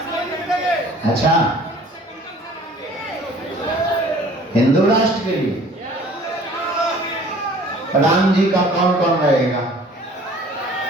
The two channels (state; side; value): normal; both; correlation 0.50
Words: अच्छा, हिंदू राष्ट्र के लिए राम जी का कौन कौन रहेगा?